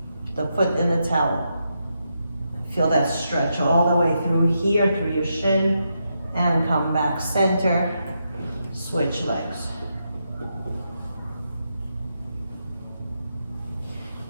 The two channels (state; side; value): inverted; both; correlation -0.83